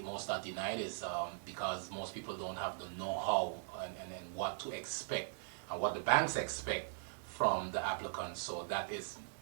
most are denied is because most people don't have the know-how and what to expect and what the banks expect from the applicants. So that is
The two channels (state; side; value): silent; left; 51 dB below the other